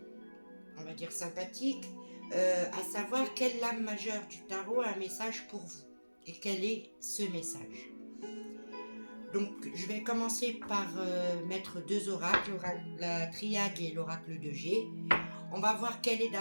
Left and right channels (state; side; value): inverted; both; correlation -1.00